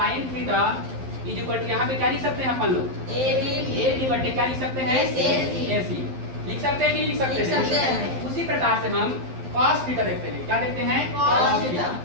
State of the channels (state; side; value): late; left; 12 ms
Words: theta is equal to, यहाँ पे क्या लिख सकते हैं अपन लोग, ए बी बटे क्या लिख सकते हैं, ए सी। लिख सकते हैं कि लिख सकते हैं। उसी प्रकार से हम cos थीटा देखते हैं। क्या देखते हैं, cos थीटा।